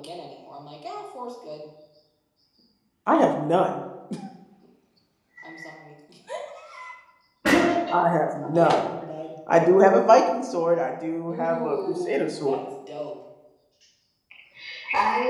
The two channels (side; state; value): both; identical; correlation 1.00